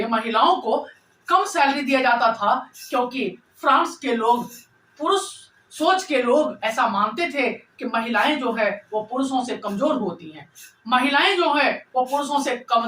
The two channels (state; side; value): identical; both; correlation 1.00